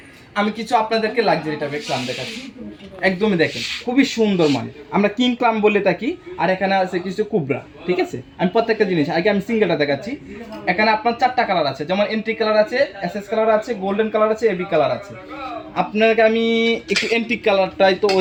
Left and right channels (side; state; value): both; identical; correlation 1.00